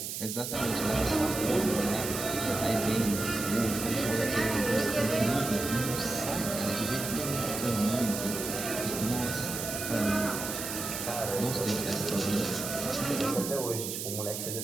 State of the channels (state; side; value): noise; right; hiss, 5 dB below the sound